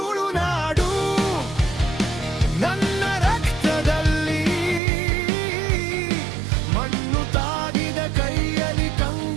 ನನ್ನ ರಕ್ತದಲ್ಲಿ, ಮಣ್ಣು ತಾಗಿದ ಕೈಯಲ್ಲಿ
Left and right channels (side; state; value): left; drops out; at 4.8 s